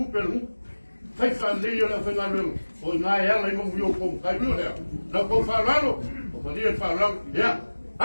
Fai fale le la fai ngalo. O nga ela i mo vio kom kai lo le. Na ko falalo. O pa dia falalo. Ya.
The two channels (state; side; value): inverted; both; correlation -1.00